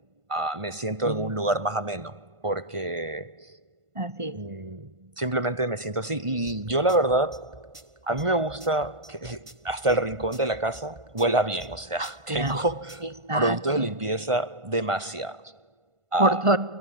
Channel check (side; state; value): left; late; 1.5 ms